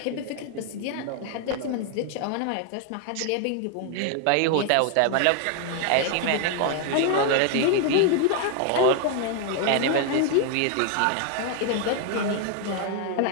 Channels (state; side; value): different; both; correlation 0.00